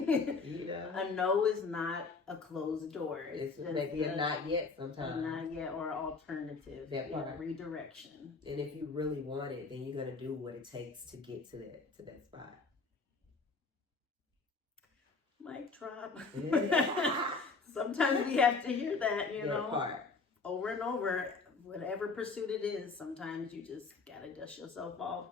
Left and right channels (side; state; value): right; quieter; 4.3 dB